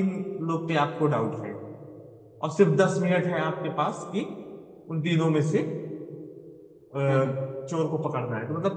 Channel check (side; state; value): both; identical; correlation 1.00